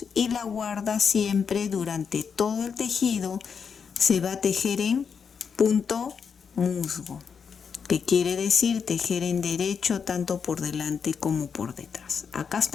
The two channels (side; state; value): right; quieter; 6.4 dB